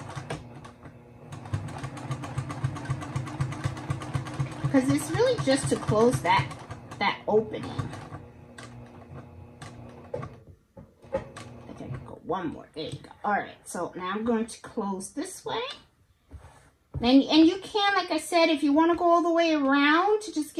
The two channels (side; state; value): both; identical; correlation 1.00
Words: Because it's really just to close that opening. I think I can go one more. There you go. All right. So now I'm going to close this way. And you can, like I said, if you want to go all the way around to just